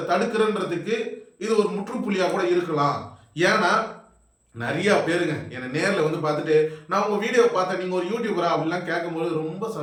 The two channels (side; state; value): both; identical; correlation 1.00